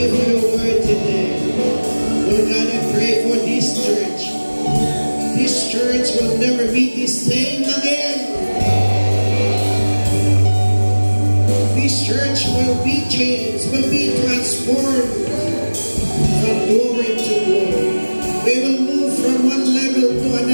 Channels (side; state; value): both; inverted; correlation -1.00